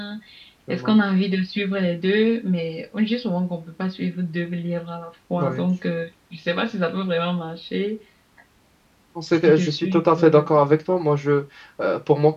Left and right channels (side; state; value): both; identical; correlation 1.00